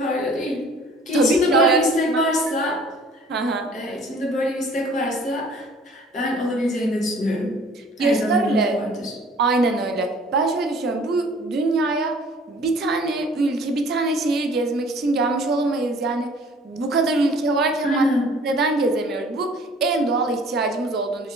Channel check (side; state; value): both; normal; correlation 0.52